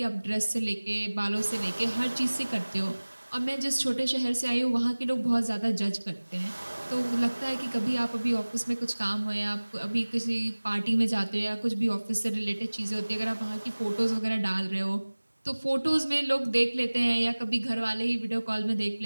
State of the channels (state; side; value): inverted; both; correlation -1.00